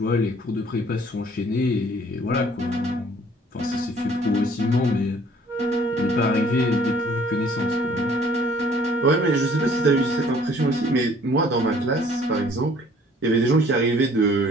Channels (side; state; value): both; normal; correlation 0.56